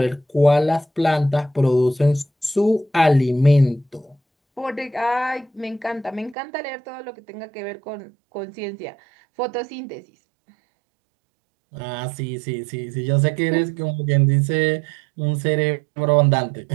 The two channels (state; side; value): drops out; left; at 6.4 s